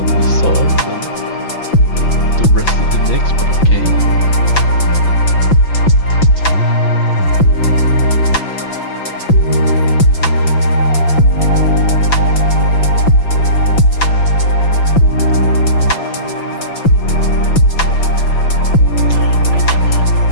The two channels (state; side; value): late; right; 5.9 ms